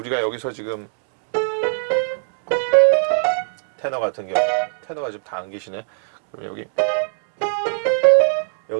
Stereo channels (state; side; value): silent; left; digital silence